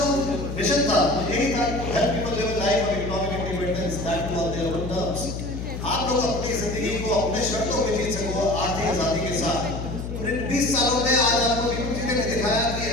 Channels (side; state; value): left; noise; hum, 6 dB below the sound